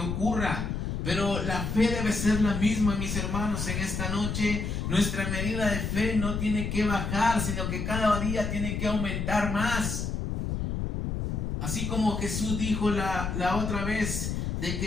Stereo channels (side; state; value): left; noise; rumble, 2 dB below the sound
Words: ocurra. Pero la fe debe ser la misma, mis hermanos, en esta noche. Nuestra medida de fe no tiene que bajar, sino que cada día tiene que aumentar más. Así como Jesús dijo la otra vez, de